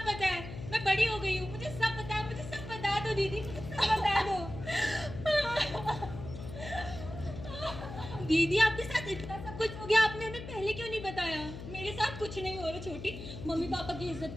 पता है, मैं बड़ी हो गई हूँ, मुझे सब पता है, मुझे सब बता दो दीदी, मुझे सब बता दो। दीदी आपके साथ इतना सब कुछ हो गया, आपने हमें पहले क्यों नहीं बताया? मेरे साथ कुछ नहीं हो रहा छोटी, मम्मी पापा की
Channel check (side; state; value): left; noise; hum, 10 dB below the sound